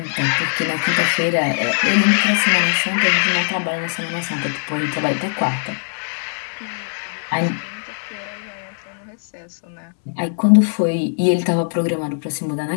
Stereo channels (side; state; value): right; silent; digital silence